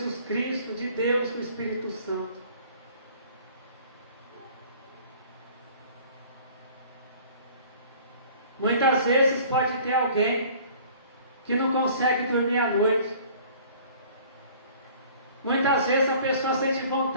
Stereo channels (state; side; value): inverted; both; correlation -0.50